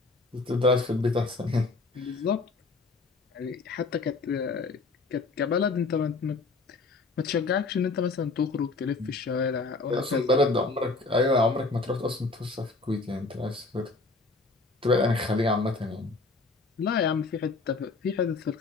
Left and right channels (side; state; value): right; quieter; 3.6 dB